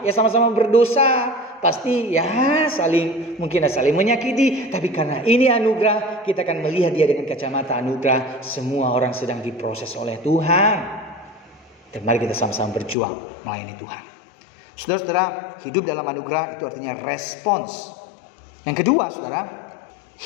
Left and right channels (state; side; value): drops out; right; at 13.0 s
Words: Ya sama-sama berdosa. Pasti ya mungkin saling menyakiti. Tapi karena ini anugerah, kita akan melihat dia dengan kacamata anugerah. Semua orang sedang diproses oleh Tuhan. Dan mari kita sama-sama berjuang melayani Tuhan. Saudara-saudara, hidup dalam anugerah itu artinya respons. Yang kedua, saudara,